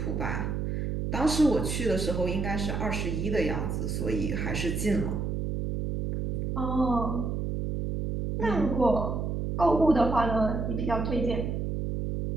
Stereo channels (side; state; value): right; noise; hum, 1 dB below the sound